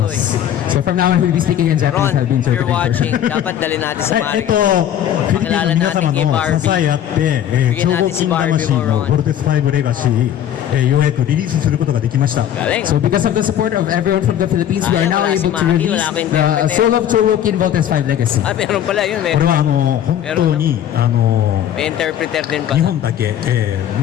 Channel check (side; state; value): right; quieter; 10.5 dB